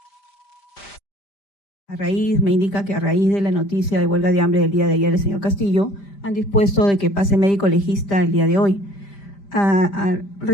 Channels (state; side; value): late; right; 5.0 ms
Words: Me indica que a raíz de la noticia de huelga de hambre del día de ayer del señor Castillo, han dispuesto de que pase médico legista el día de hoy.